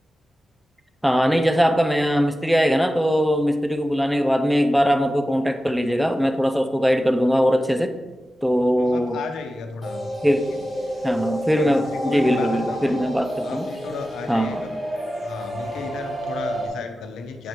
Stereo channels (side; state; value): both; normal; correlation 0.94